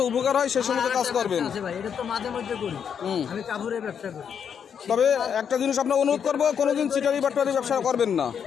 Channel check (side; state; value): right; quieter; 7.6 dB